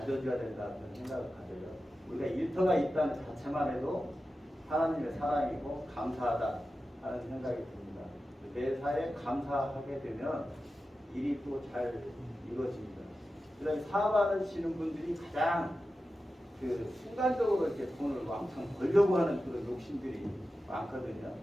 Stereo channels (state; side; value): normal; both; correlation 0.93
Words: 된다는 생각을 가져요. 우리가 일터가 있다는 자체만 해도 하나님의 사랑이고 감사하다 하는 생각이 듭니다. 매사에 감사하게 되면 일이 또 잘 이루어집니다. 그래서 사업하시는 분들이 가장 그 순간적으로 이렇게 돈을 왕창 벌려고 하는 그런 욕심들이 많거든요.